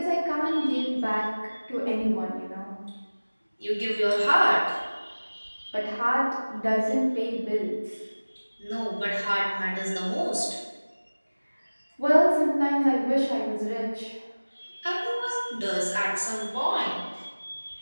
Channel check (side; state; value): both; inverted; correlation -1.00